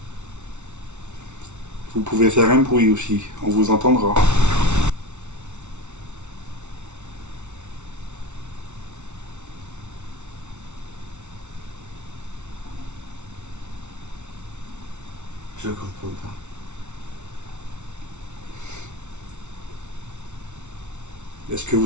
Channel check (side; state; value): left; late; 0.83 ms